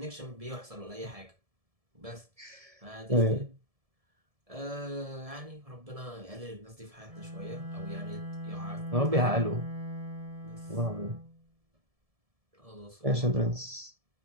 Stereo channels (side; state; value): left; late; 1.7 ms